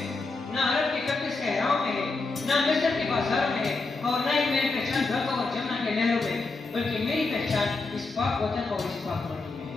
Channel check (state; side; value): quieter; right; 3.7 dB